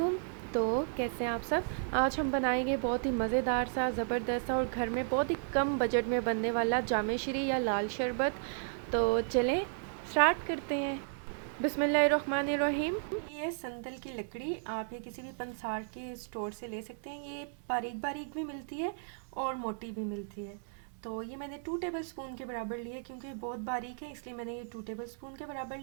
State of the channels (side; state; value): left; silent; digital silence